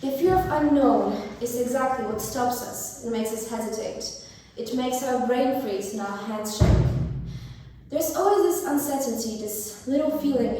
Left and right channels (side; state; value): both; identical; correlation 1.00